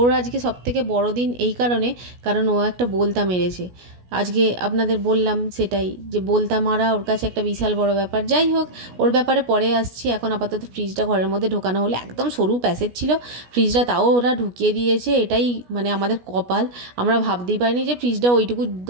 আজকে সবথেকে বড় দিন এই কারণ ও একটা বলতা মেরেছে। আজকে আপনাদের বললাম সেটাই, যে বলতা মারা ওর কাছে একটা বিশাল বড় ব্যাপার। যাই হোক, ওর ব্যাপারে পরে আসছি। এখন আপাতত ফ্রিজটা ঘরের মধ্যে ঢোকানো হলো। একদম সরু প্যাসেজ ছিল ফ্রিজটা, তাও ওরা ঢুকিয়ে দিয়েছে। এটাই মানে আমাদের কপাল। আমরা ভাবতেই পারিনি যে ফ্রিজটা ওইটুকু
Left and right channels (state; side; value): late; left; 16 ms